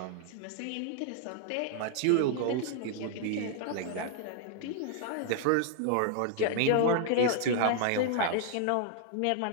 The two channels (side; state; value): both; different; correlation 0.00